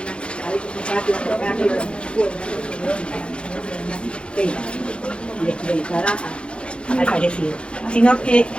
al parecido, sino que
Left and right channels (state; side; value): late; right; 0.057 ms